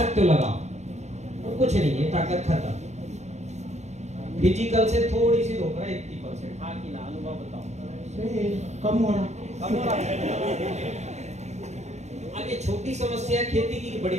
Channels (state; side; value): late; left; 0.33 ms